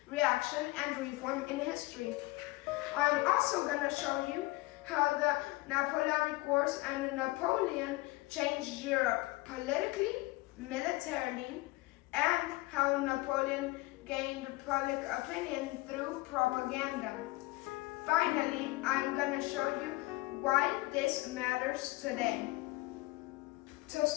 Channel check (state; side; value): quieter; right; 21.7 dB